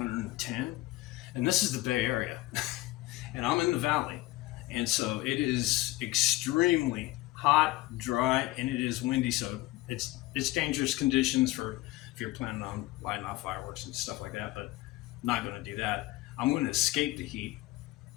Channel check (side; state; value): right; quieter; 18.2 dB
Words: And this is the Bay Area. And I'm in the valley. And so it is extremely hot, dry, and it is windy. So it's dangerous conditions for if you're planning on lighting off fireworks and stuff like that. But I'm not going to do that. I'm going to escape the heat.